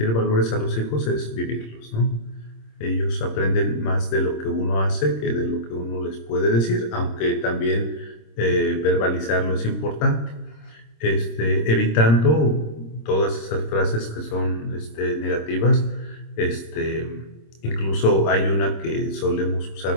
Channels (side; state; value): right; late; 26 ms